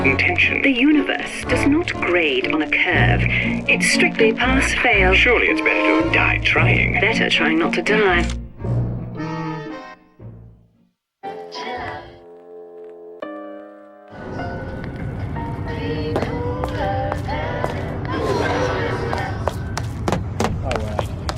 intention. The universe does not grade on a curve. It's strictly pass-fail. Surely it's better to have died trying. Better trying not to die.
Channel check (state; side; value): identical; both; correlation 1.00